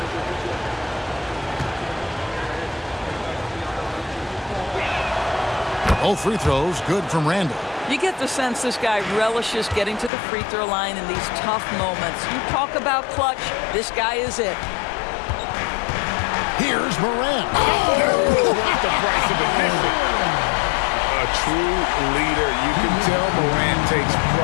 Both free throws good from Randall. You get the sense this guy relishes getting to the free throw line in these tough moments. You talk about clutch, this guy is it. Here's Morant. What the price of admission? A true leader. You can tell Morant takes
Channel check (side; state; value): right; drops out; at 10.1 s